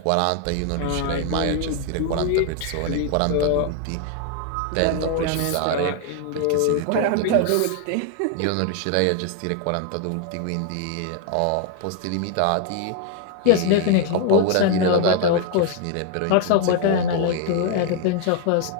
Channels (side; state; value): both; different; correlation 0.00